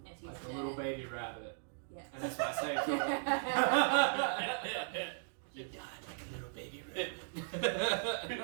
And he's Like a dead. little baby rabbit. Yes. And that's what I say to him. You died like a little baby rabbit.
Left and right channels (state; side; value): silent; left; digital silence